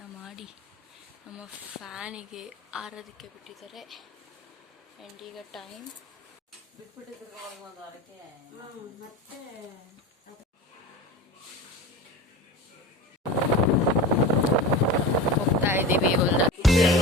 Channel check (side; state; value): both; normal; correlation 0.30